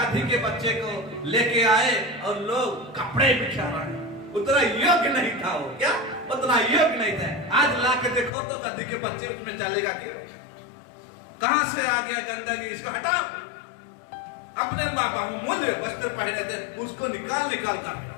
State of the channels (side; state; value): right; drops out; at 8.3 s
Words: के बच्चे को लेके आए और लोग कपड़े बिछा रहे हैं। उतना योग्य नहीं था वो, क्या उतना योग्य नहीं था। आज ला के देखो तो गधी के बच्चे उसमें चलेगा कि कहां से आ गया गंदगी, इसको हटाओ। अपने बहुमूल्य वस्त्र पहने थे, उसको निकाल कर,